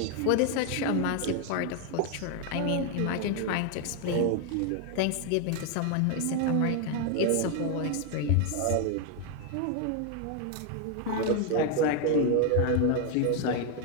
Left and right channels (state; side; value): different; both; correlation 0.01